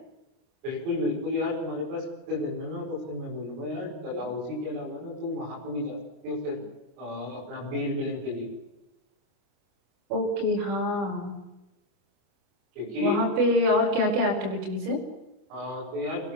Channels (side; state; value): left; late; 32 ms